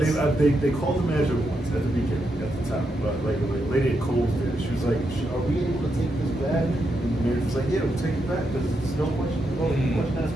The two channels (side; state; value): both; normal; correlation 0.83